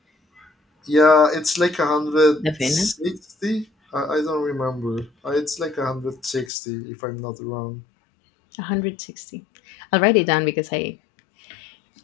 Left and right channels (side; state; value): right; drops out; at 6.5 s